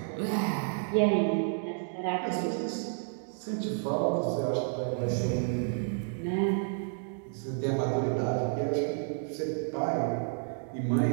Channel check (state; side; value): silent; left; digital silence